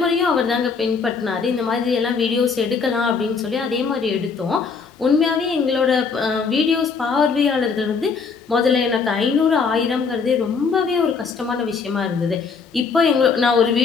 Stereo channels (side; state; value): right; quieter; 5.2 dB